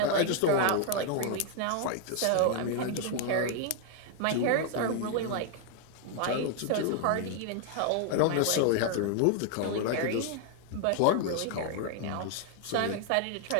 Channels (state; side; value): different; both; correlation 0.00